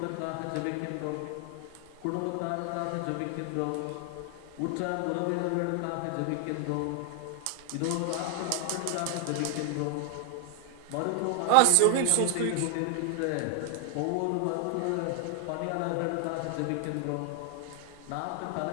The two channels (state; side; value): different; both; correlation 0.00